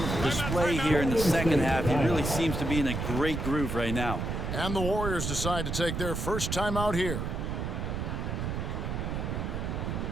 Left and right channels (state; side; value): noise; right; rumble, 2 dB below the sound